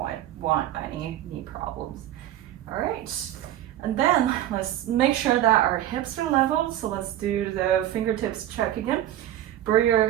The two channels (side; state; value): left; quieter; 12.8 dB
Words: want any knee problems. All right, and then let's make sure that our hips are level. So let's do the fingertips check again. Bring your